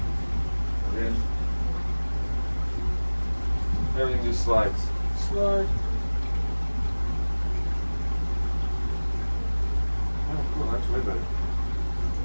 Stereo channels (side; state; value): both; inverted; correlation -1.00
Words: And then everything just slides. Slide. Oh, cool. That's way better.